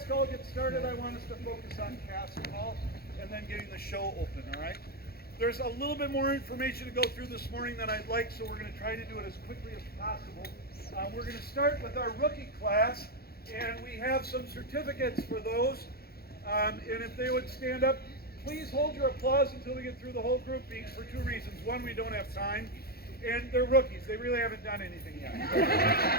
Hall gets started, I want us to focus on Cask Hall and then getting the show open, all right? There's a little bit more information to go through this morning than I'd like, so we're going to try to do it as quickly as possible. We're going to start with our rookie class, and we have some certificates for those. And if they would stand up, please hold your applause until we get through the whole group for two reasons. One, we don't have time, and they're rookies. They really haven't done anything yet.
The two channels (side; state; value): right; late; 0.45 ms